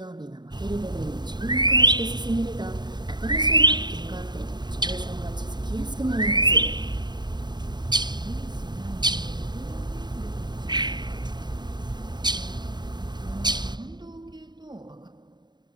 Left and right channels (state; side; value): late; left; 0.21 ms